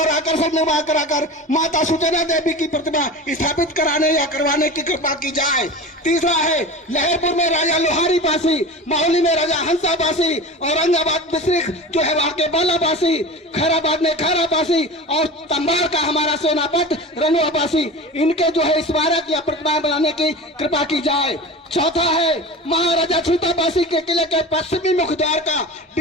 आकर्षक निर्माण कराकर माता सुचना देवी की प्रतिमा स्थापित कराने या करवाने की कृपा की जाए। तीसरा है लहरपुर में राजा लोहारी बासी, माहौली में राजा हंसा बासी, औरंगाबाद डिस्ट्रिक्ट जो है वहाँ के बाला बासी, खैराबाद में खैरा बासी और तंबार का हमारा सेनापति रनुआ बासी, इनके जो है स्मारक या प्रतिमा बनाने की कृपा की जाए। चौथा है महाराजा छीताबासी के किले के पश्चिमी मुख्य द्वार का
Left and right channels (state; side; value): normal; both; correlation 0.32